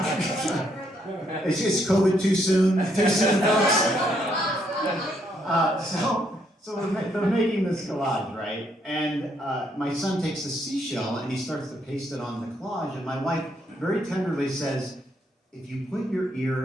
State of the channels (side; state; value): both; normal; correlation 0.73